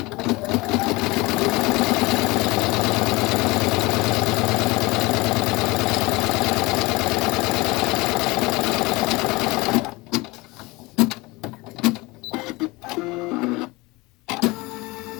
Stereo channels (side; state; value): right; quieter; 23.1 dB